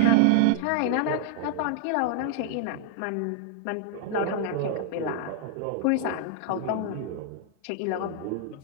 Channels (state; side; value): different; both; correlation -0.01